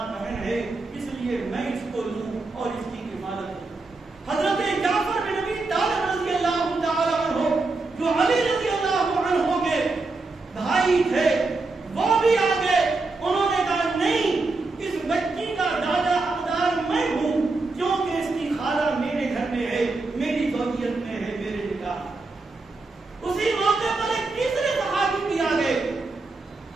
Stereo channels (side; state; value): left; quieter; 3.5 dB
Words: بہن ہے, اس لیے میں اس کو لوں اور اس کی حفاظت کروں. حضرت جعفر بن ابی طالب رضی اللہ تعالی عنہ جو علی رضی اللہ عنہ کے بھائی تھے وہ بھی آگے, انہوں نے کہا نہیں, اس بچی کا دادا حقدار میں ہوں کیونکہ اس کی خالہ میرے گھر میں ہے, میری زوجیت میں ہے, میرے نکاح. اسی موقع پر ایک تیسرے صحابی بھی آگے,